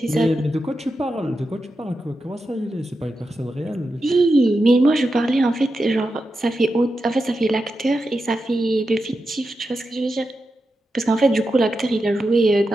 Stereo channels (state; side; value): normal; both; correlation 0.89